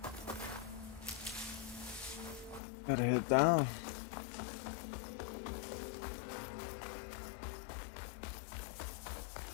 Gotta head down.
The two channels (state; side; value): drops out; right; at 2.6 s